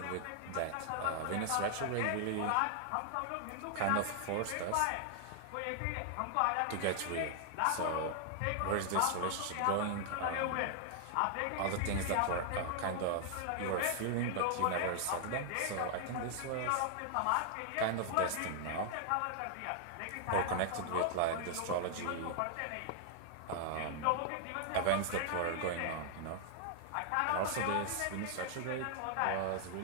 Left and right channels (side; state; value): both; different; correlation 0.00